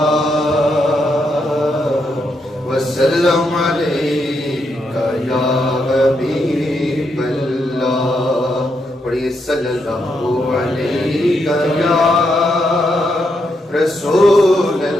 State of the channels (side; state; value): both; normal; correlation 0.80